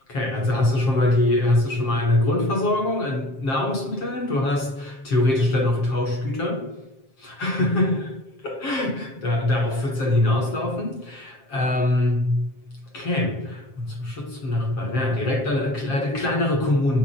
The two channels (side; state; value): right; late; 7.5 ms